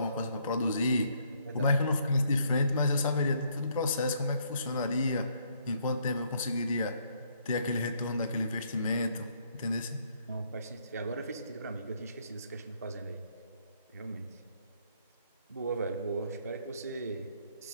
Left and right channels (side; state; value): both; inverted; correlation -0.69